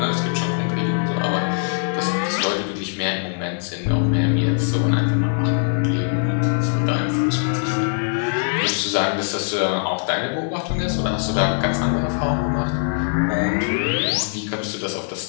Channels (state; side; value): silent; right; 65 dB below the other